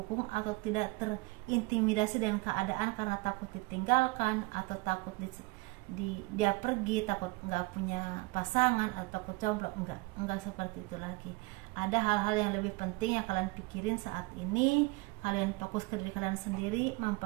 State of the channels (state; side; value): quieter; left; 24.3 dB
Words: atau tidak terintimidasi dengan keadaan karena takut ditinggalkan atau takut dia pergi, takut nggak punya pasangan atau takut jomblo. Enggak seperti itu lagi. Ada hal-hal yang lebih penting yang kalian pikirin saat ini. Kalian fokus ke diri kalian sendiri,